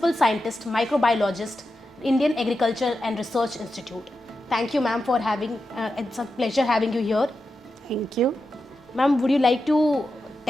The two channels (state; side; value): normal; both; correlation 0.89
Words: Scientist, Microbiologist, Indian Agriculture and Research Institute. Thank you, ma'am, for having. It's a pleasure having you here. Thank you. Ma'am, would you like to